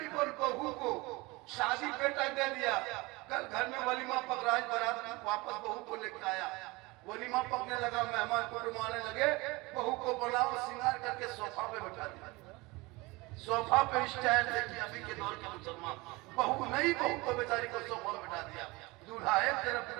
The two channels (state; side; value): quieter; left; 23.6 dB